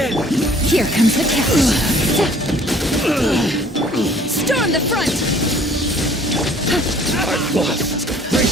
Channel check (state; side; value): normal; both; correlation 0.55